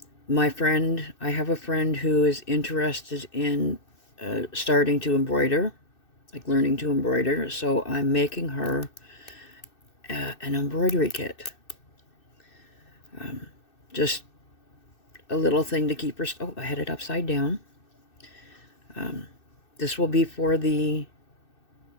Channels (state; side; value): late; right; 2.6 ms